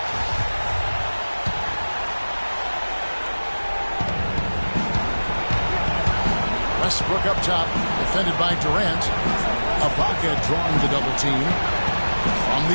Westbrook up top, defended by Durant. Ibaka drawing the double team. From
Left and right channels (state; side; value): inverted; both; correlation -1.00